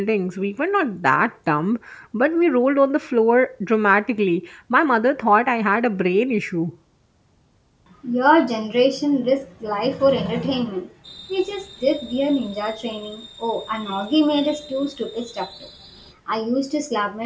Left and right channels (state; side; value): identical; both; correlation 1.00